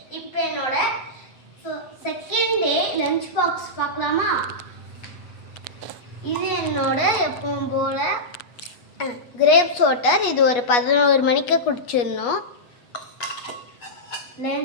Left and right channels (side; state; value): right; late; 8.3 ms